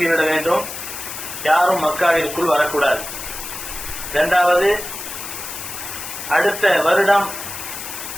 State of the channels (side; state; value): left; noise; hiss, 8 dB below the sound